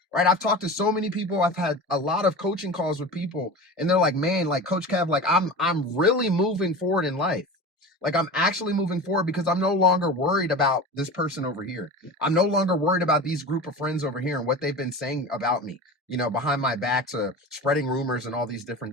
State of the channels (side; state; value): both; normal; correlation 0.32